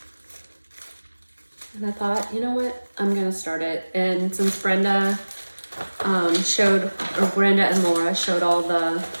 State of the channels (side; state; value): both; inverted; correlation -1.00